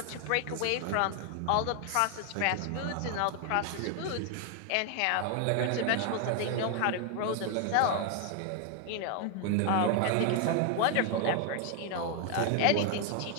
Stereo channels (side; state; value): both; different; correlation 0.00